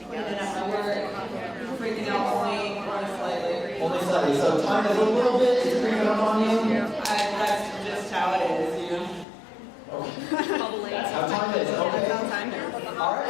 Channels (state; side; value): drops out; right; at 9.2 s